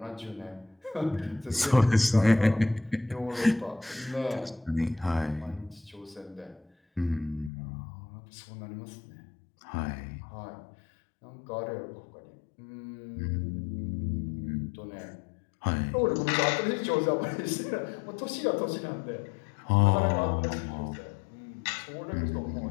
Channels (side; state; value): right; drops out; at 7.5 s